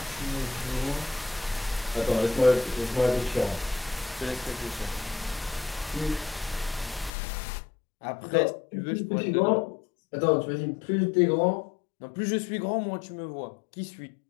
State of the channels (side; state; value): right; drops out; at 7.1 s